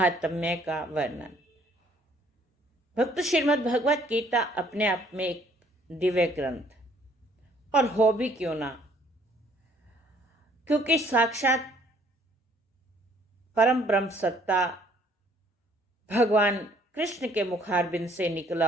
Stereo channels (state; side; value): normal; both; correlation 0.61